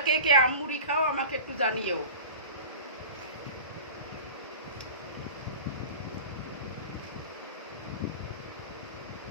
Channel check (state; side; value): inverted; both; correlation -0.36